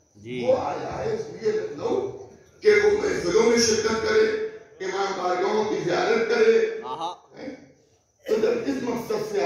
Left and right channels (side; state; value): both; identical; correlation 1.00